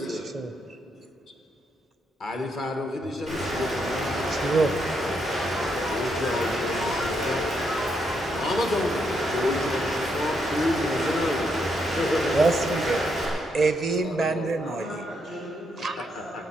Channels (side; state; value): both; normal; correlation 0.78